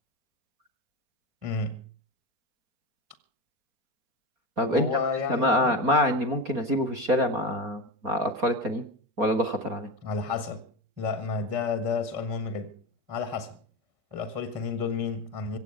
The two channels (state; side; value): late; left; 4.3 ms